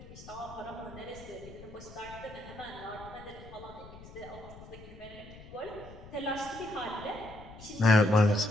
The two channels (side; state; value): left; noise; rumble, 16 dB below the sound